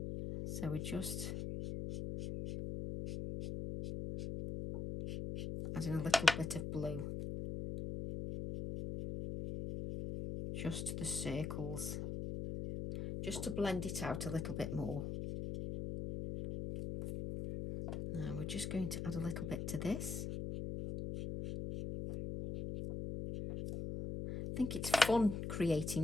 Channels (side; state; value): left; noise; hum, 4 dB below the sound